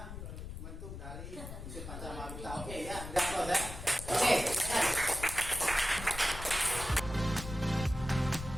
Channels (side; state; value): left; noise; rumble, 9 dB below the sound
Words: bentuk dari unsur panca mahabhuta. Oke ya, udah close ya. Oke.